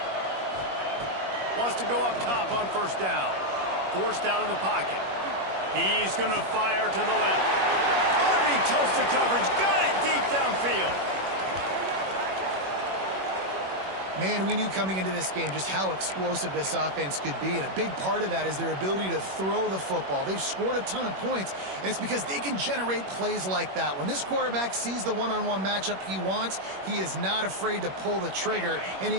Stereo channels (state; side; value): late; left; 21 ms